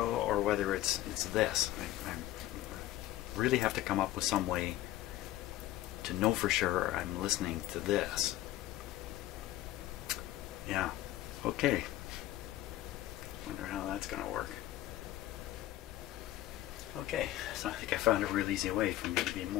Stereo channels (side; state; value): right; quieter; 14.9 dB